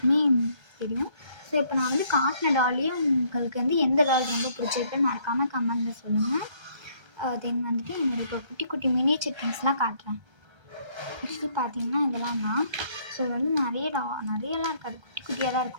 தெரியும். ஸோ இப்போ நான் வந்து காட்டின டால்லையே உங்களுக்கு வந்து எந்த டால் ரொம்ப பிடிச்சிருக்குன்னு மறக்காமல் கமெண்டில் சொல்லுங்கள். தென் வந்துட்டு என்னோடய இப்போ குட்டி குட்டி மினியேச்சர் திங்ஸ்லாம் காட்டுறேன். ஆக்சுவலி பார்த்தீங்கன்னா இதெல்லாம் தான். ஸோ இது வந்து நிறையலாம் இருக்காது, குட்டி குட்டியாக தான்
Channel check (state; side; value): late; left; 1.3 ms